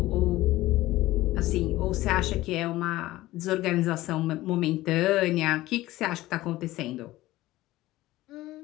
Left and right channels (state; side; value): quieter; right; 17.1 dB